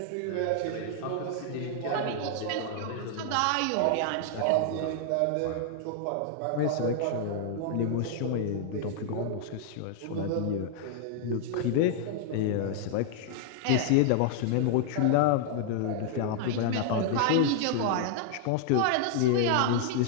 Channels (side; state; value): both; different; correlation -0.01